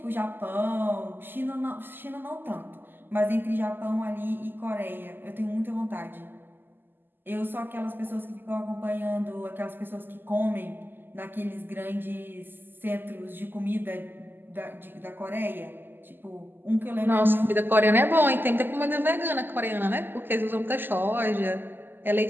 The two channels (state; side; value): late; left; 0.093 ms